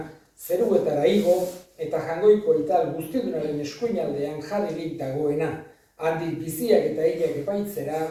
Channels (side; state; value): both; identical; correlation 1.00